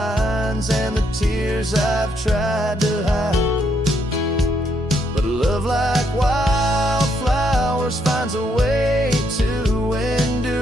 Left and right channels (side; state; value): both; normal; correlation 0.74